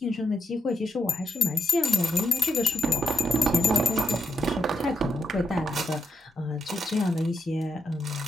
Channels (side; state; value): both; normal; correlation 0.82